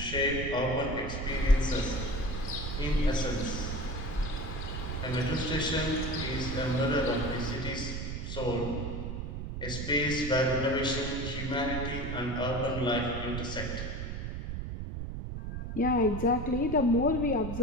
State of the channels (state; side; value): noise; right; rumble, 5 dB below the sound